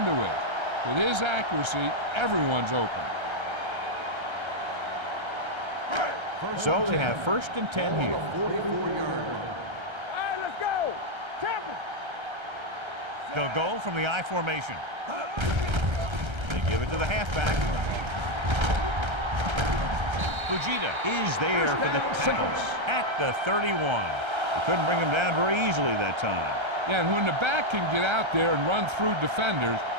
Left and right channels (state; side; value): late; left; 1.3 ms